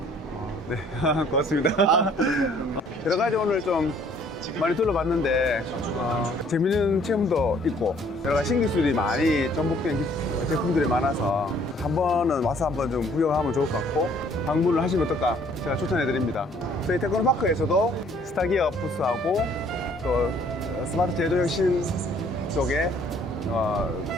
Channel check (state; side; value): normal; both; correlation 0.59